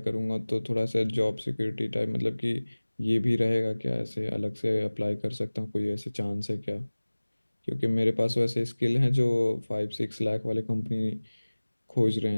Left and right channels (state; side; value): inverted; both; correlation -1.00